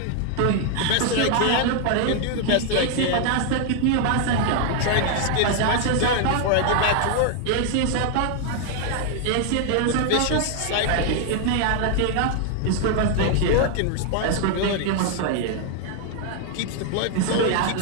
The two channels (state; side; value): different; both; correlation 0.00